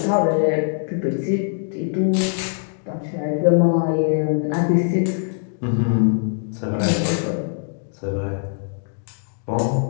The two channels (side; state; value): right; silent; digital silence